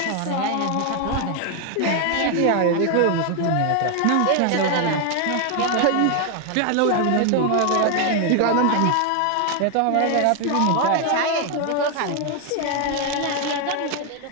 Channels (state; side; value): different; both; correlation 0.01